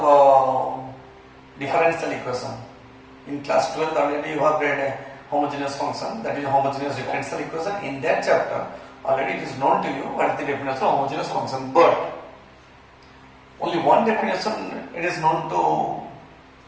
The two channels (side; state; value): both; identical; correlation 1.00